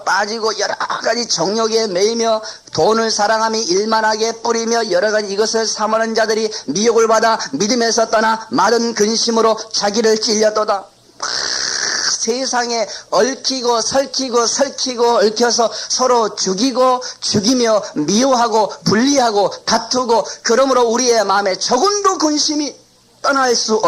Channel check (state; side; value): identical; both; correlation 1.00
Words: 빠지고 여러 가지 정욕에 매이며 돈을 사랑하며 일만하게 뿌리며 여러 가지 이것을 사모하는 자들이 미혹을 받아 믿음에서 떠나 마른 근심으로 자기를 찔렸도다. 세상에 얽히고 설키고 얽혀서 서로 죽이며 미워하고 분리하고 다투고 그러므로 우리의 마음에 조금도 근심이 떠날 수